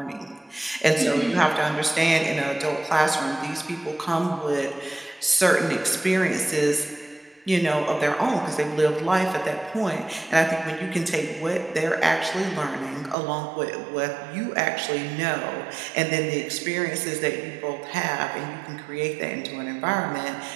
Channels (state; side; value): drops out; left; at 13.2 s